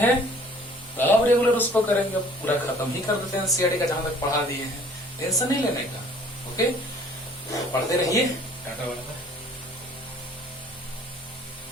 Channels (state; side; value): normal; both; correlation 0.54